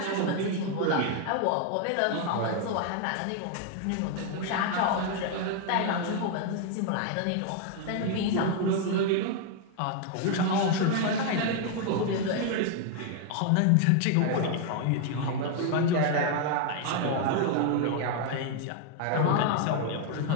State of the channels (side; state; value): both; different; correlation 0.00